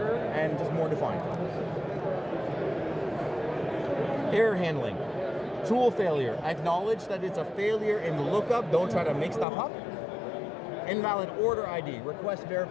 and just more defined. Error handling. Tool failure. Acknowledge that it's a failure in the lookup. Don't try to make stuff up. Invalid order ID. Request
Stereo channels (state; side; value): drops out; right; at 9.5 s